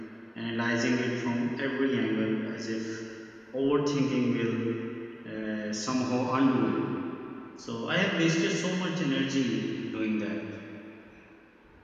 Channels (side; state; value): both; identical; correlation 1.00